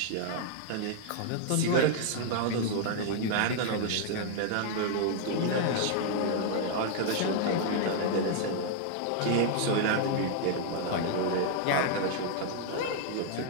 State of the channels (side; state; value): both; different; correlation 0.00